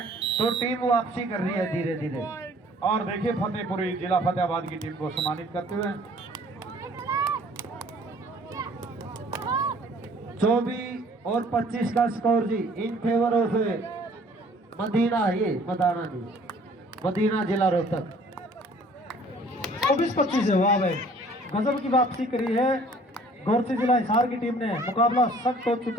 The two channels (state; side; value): normal; both; correlation 0.55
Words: तो टीम वापसी कर रही है धीरे धीरे। और देखिए फतेहपुरी जिला फतेहाबाद की टीम को सम्मानित करते हुए 24 और 25 का स्कोर जी इन फेवर ऑफ मदीना, ये मदाना जी, मदीना जिला रोहतक। 24-25 है। वाह भाई, गजब की वापसी करी है गोरछी जिला हिसार की टीम ने। मुकाबला सख्त हो